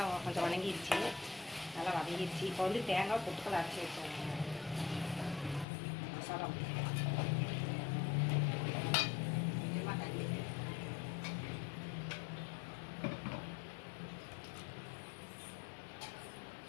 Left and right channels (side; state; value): right; drops out; at 5.7 s